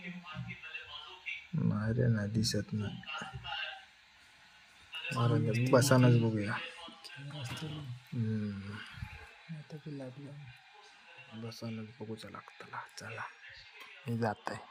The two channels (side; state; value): both; identical; correlation 1.00